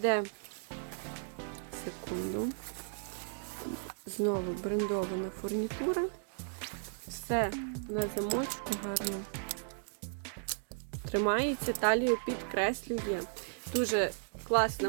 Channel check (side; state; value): left; silent; digital silence